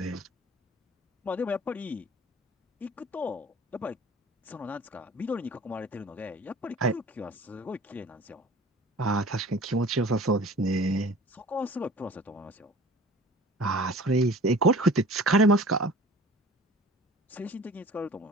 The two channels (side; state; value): both; normal; correlation 0.44